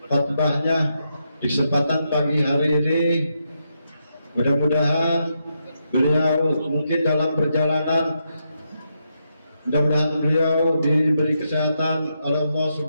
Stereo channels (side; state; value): both; inverted; correlation -0.82